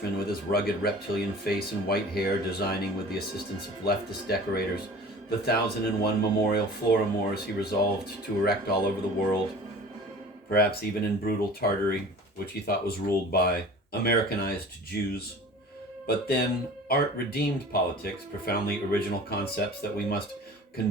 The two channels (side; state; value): both; normal; correlation 0.42